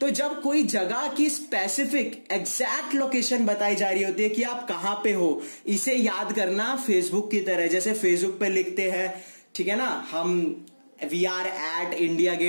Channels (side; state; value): both; inverted; correlation -1.00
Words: तो जब कोई जगह की स्पेसिफिक एग्जैक्ट लोकेशन बताई जा रही होती है कि आप कहां पे हो, इसे याद करना फेसबुक की तरह। जैसे फेसबुक पे लिखते हैं ठीक है ना, हम we are at India